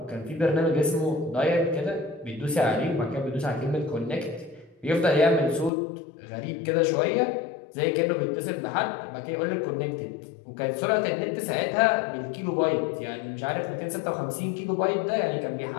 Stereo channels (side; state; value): right; drops out; at 5.7 s